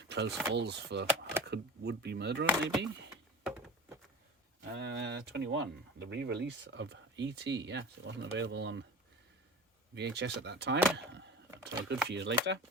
Close falls for a would-be murderer, maybe. 21, the re-release of E.T. Yes, it wasn't available on VHS at that time, until a good few years later.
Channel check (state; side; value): normal; both; correlation 0.36